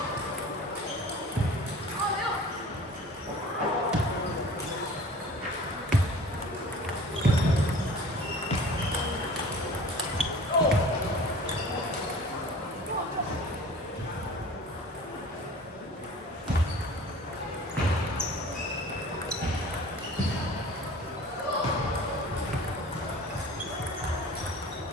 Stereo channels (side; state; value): both; normal; correlation 0.44